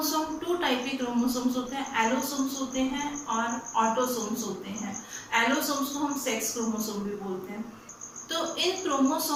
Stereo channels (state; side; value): identical; both; correlation 1.00